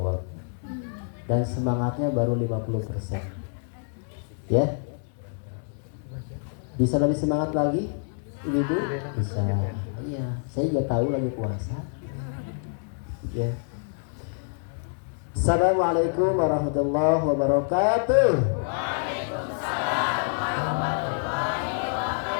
Dan semangatnya baru 50%. Ya. Bisa lebih semangat lagi? Ibu? Bisa. Iya, saya juga tahu lagi puasa. Ya. Assalamualaikum warahmatullahi wabarakatuh. Waalaikumsalam warahmatullahi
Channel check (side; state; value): right; silent; digital silence